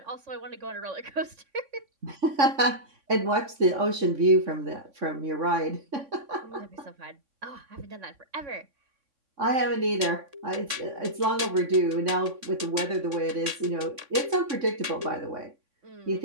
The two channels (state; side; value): late; left; 3.6 ms